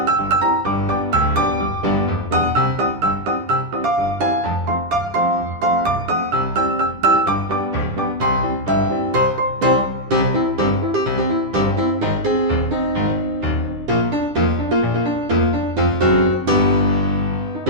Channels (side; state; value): left; late; 9.9 ms